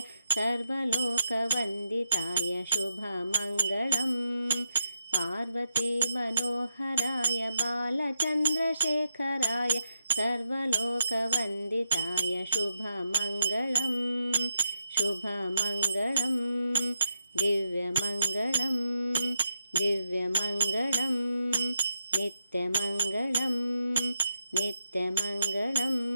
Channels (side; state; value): both; inverted; correlation -0.86